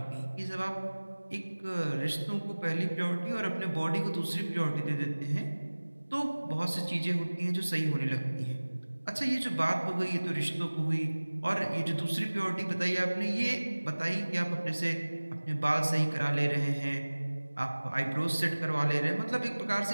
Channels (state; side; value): inverted; both; correlation -1.00